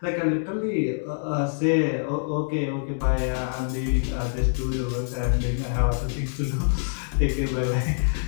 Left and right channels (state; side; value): silent; right; 61 dB below the other